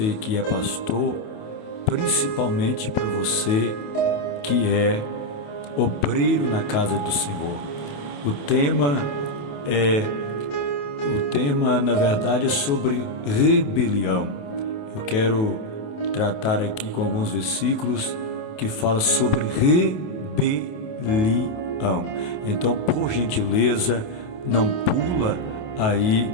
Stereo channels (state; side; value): late; right; 28 ms